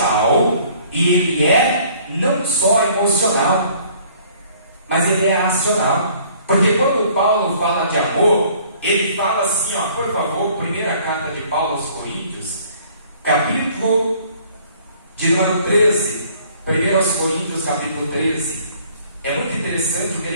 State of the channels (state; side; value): inverted; both; correlation -0.57